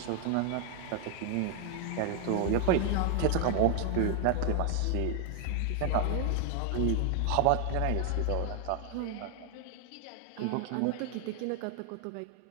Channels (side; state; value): both; different; correlation 0.00